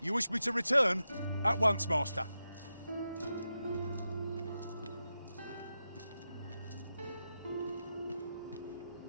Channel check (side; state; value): both; inverted; correlation -0.89